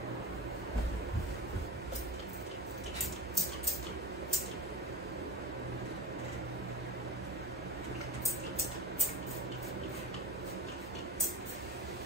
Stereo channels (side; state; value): both; normal; correlation 0.27